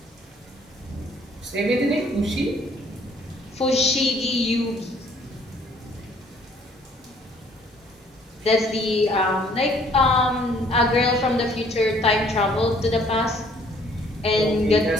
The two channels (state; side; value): normal; both; correlation 0.61